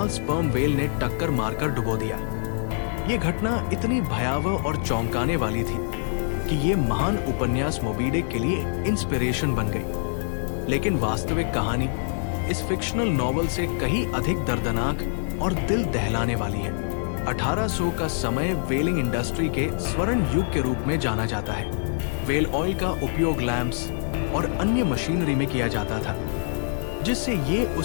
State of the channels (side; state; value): right; silent; 62 dB below the other